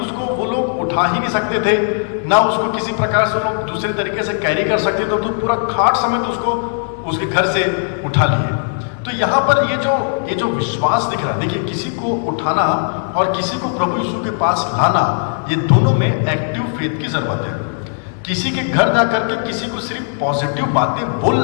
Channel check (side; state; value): right; silent; 68 dB below the other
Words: उसको वो लोग उठा ही नहीं सकते थे, ना उसको किसी प्रकार से लोग दूसरे तरीके से कैरी कर सकते थे, तो पूरा खाट समेत उसको उसके घर से उठा लिए। तो यहाँ पर ये जो विश्वास दिख रहा है, देखिए किसी को उठाना और किसी को प्रभु यीशु के पास लाना, ये दोनों में एक्टिव फेथ की जरूरत है। किसी के घर जाकर के किसी को सिर्फ पॉजिटिव बातें